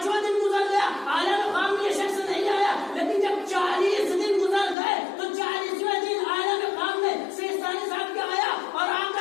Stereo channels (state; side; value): drops out; right; at 4.8 s